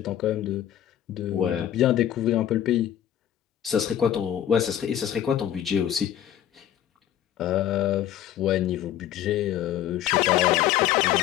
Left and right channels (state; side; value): quieter; right; 11.3 dB